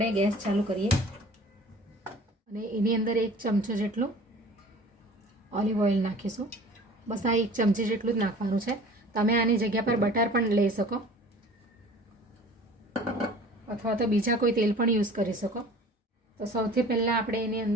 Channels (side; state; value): both; normal; correlation 0.46